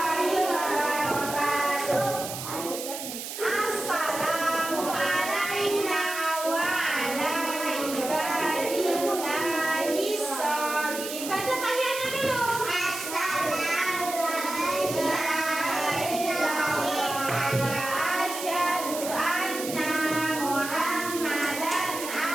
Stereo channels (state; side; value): noise; right; hiss, 8 dB below the sound